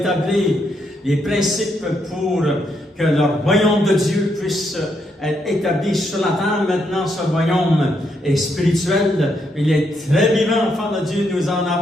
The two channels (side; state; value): both; normal; correlation 0.77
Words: les principes pour que le royaume de Dieu puisse être établi sur la terre. Maintenant, ce royaume est spirituel. Il est très vivant, enfant de Dieu. Nous en